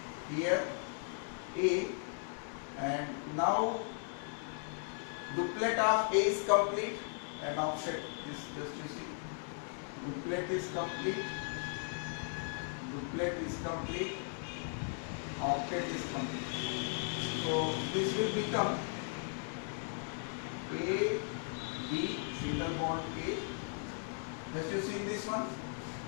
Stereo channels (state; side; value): silent; right; 53 dB below the other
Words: here A, and now duplet of A is complete and offset. This just you see, duplet is complete, octet is complete. So this will become A, B, single bond A. Just you see this one,